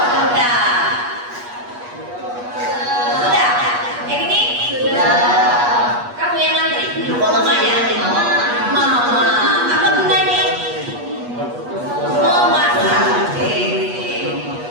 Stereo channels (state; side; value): late; left; 8.3 ms